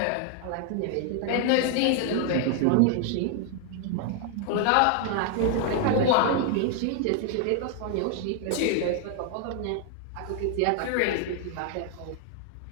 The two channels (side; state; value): both; different; correlation 0.00